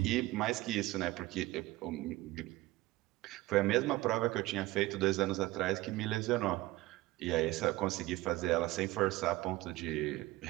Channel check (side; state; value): left; quieter; 18.8 dB